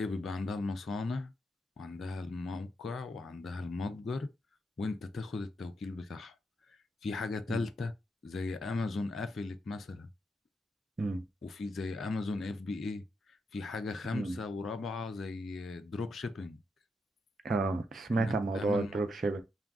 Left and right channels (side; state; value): both; normal; correlation 0.82